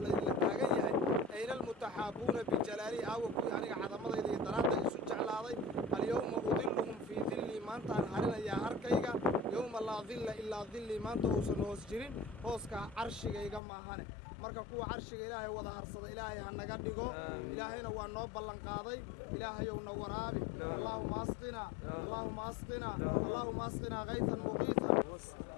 اللي تاقنيا أين المتحابون بجلالي أوكو يعني عظمة إذا درادة يسوع جعلها اليوم أظلهم في ظلي ما أنت أنهارنا يا أركيغا يوم لا ظل إلا ظلي ما أنت أوسن هوسجرين هوسكا عرشيغا إيغا ماهانه marka kuwa carshiga ilaahay wada harsada ilaahay ha naga dhigo ilaahayna waa noo ballan qaaday ilaahayow na waraabi allahumma asqina allahumma asqina allahumma asqina ghaythan muqiithan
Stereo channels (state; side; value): drops out; right; at 13.6 s